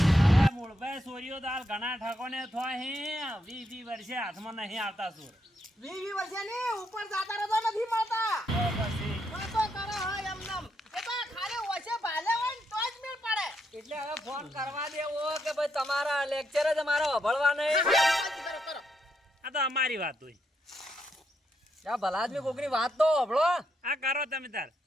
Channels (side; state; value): both; normal; correlation 0.79